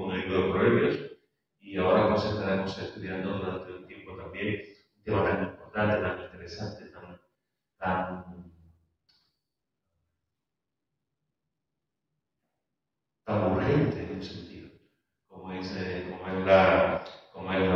el libro de Proverbios y ahora pues estaremos estudiando durante un tiempo también un tema tan importante, tan interesante, tan, tan urgente en un sentido, como es la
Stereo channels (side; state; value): both; identical; correlation 1.00